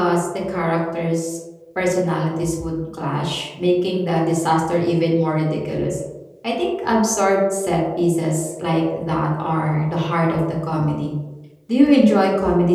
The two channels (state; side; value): identical; both; correlation 1.00